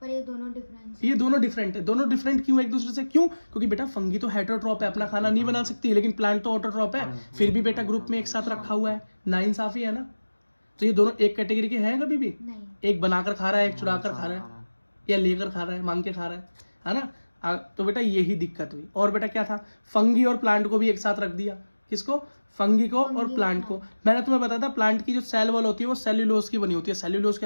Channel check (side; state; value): both; inverted; correlation -1.00